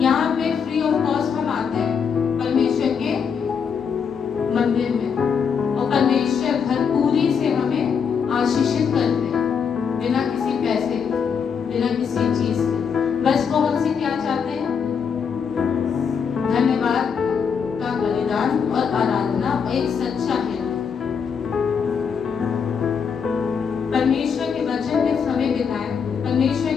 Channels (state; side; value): quieter; right; 6.6 dB